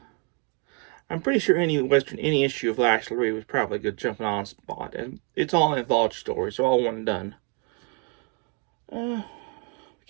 I'm pretty sure any issue of Lash LaRue was probably a good jumping on spot, and it's all an anthology story, so all one and done.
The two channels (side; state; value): left; quieter; 37.9 dB